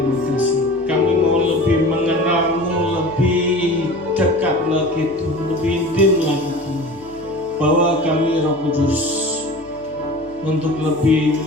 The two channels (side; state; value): left; noise; hum, 25 dB below the sound